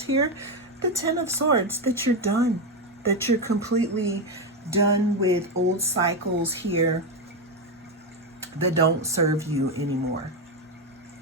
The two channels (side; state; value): both; normal; correlation 0.09